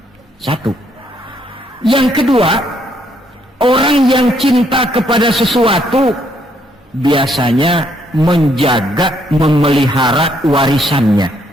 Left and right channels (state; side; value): normal; both; correlation 0.71